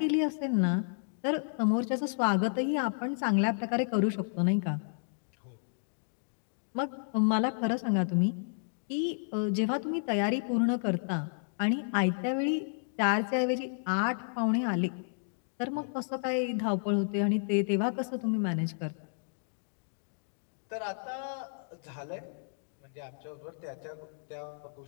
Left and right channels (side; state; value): right; silent; digital silence